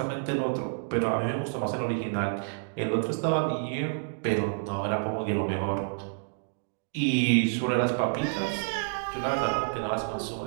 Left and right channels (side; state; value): left; silent; digital silence